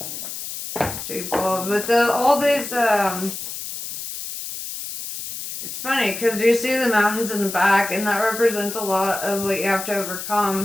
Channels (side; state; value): left; noise; hiss, 8 dB below the sound